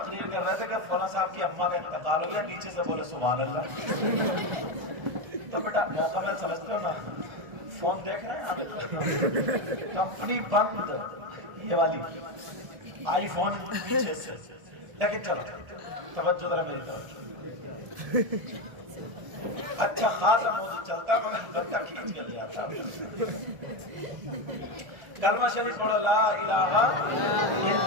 کر رہے تھے کہ فلاں صاحب کی اماں کا انتقال ہو گیا، نیچے سے بولے سبحان اللہ. تو بیٹا موقع محل سمجھتے ہو نا. فون دیکھ رہے ہیں آپ؟ کمپنی بند یہ والی آئی فون پیچھے سے. لیکن چلو توجہ ذرا میری طرف. اچھا خاصا موضوع چلتا مگر بندہ کھینچ کے لے آتا. کلمہ شریف پڑھو لا الہ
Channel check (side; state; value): left; late; 1.7 ms